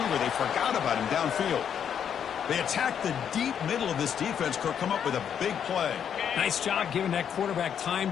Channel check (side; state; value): right; quieter; 8.4 dB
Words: They forgot about him downfield. They attack the deep middle of this defense. Kirk come up with a big play. Nice job giving that quarterback time